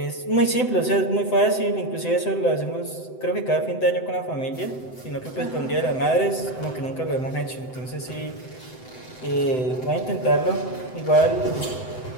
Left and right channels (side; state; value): right; late; 7.8 ms